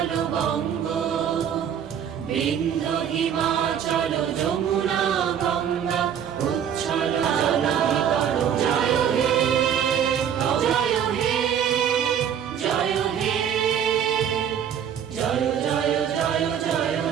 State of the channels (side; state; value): left; quieter; 8.7 dB